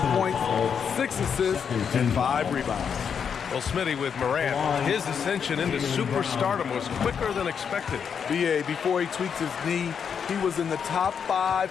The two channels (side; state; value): right; quieter; 7.1 dB